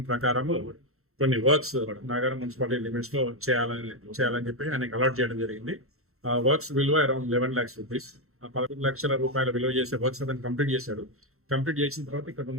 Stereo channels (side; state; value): left; late; 0.63 ms